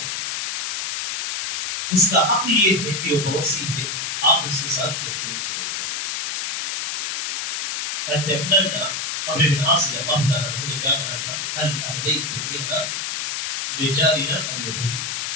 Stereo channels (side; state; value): left; noise; hiss, 3 dB below the sound